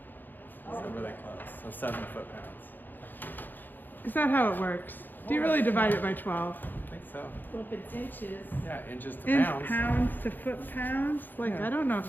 So really close. So 7 foot-pounds. Is that how it works? Do you really divide it by 12? I think so. Well, if it's inches, Yeah, inches to Inch pounds. pounds to foot-pounds? Like, Yeah. I don't know if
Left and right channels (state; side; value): late; right; 0.089 ms